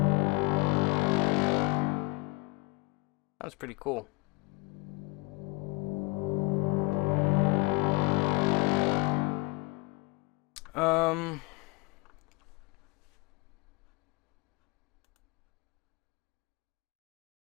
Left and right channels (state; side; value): quieter; right; 26.5 dB